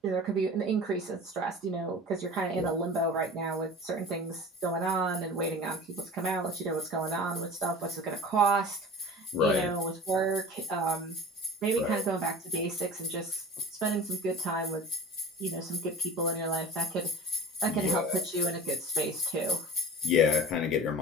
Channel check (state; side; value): normal; both; correlation 0.38